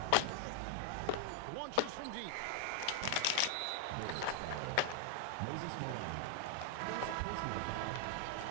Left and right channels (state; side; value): different; both; correlation 0.00